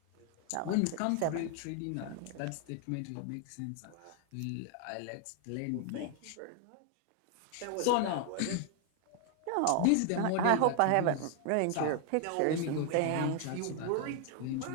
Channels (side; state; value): both; different; correlation 0.00